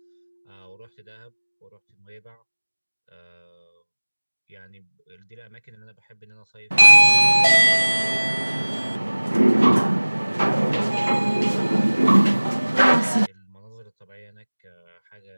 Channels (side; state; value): both; inverted; correlation -1.00